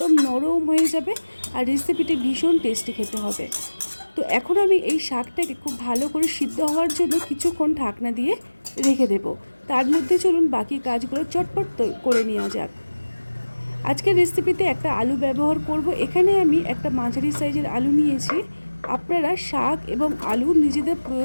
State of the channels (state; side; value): inverted; both; correlation -1.00